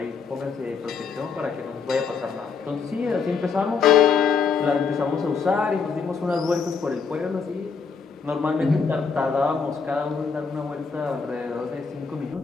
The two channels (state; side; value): quieter; right; 5.5 dB